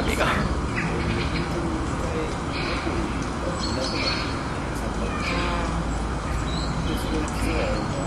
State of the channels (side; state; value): both; identical; correlation 1.00